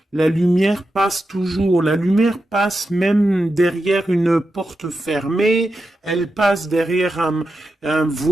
passe toujours. La lumière passe même derrière une porte fermée. Elle passe derrière un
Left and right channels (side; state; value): both; normal; correlation 0.89